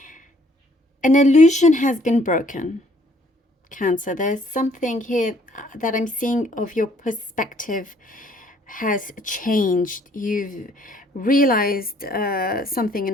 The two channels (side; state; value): both; normal; correlation 0.62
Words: illusion has been broken, Cancer. There's something here that I'm seeing of your perspective has changed. You've realized something in